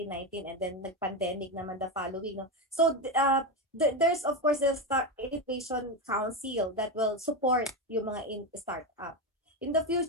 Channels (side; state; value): both; normal; correlation 0.13